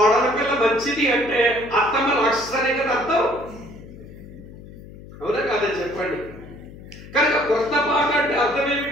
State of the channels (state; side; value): noise; left; hum, 17 dB below the sound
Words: పిల్ల మంచిది అంటే అత్తమ్మ రాక్షసనే కదా అర్థం. అవునా కాదని చెప్పండి. కనుక కొత్త పాట అంటే అర్థం